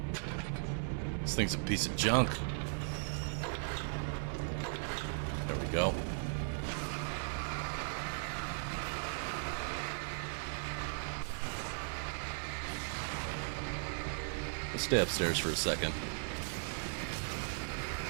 This thing's a piece of junk. There we go. Let's stay upstairs for a second.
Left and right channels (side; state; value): left; silent; digital silence